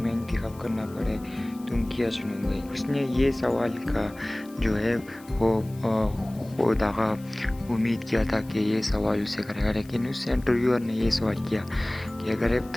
इंतखाब करना पड़े, तुम क्या चुनोगे? उसने ये सवाल का जो है वो दागा उम्मीद किया था कि ये सवाल उसे करेगा, लेकिन उस इंटरव्यूअर ने ये सवाल किया कि अगर एक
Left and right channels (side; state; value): left; noise; hiss, 24 dB below the sound